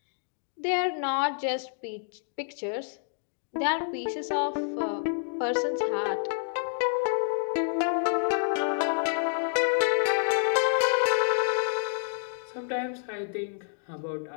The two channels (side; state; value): right; silent; digital silence